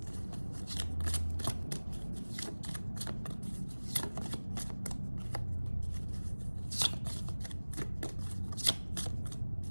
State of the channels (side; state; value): both; inverted; correlation -1.00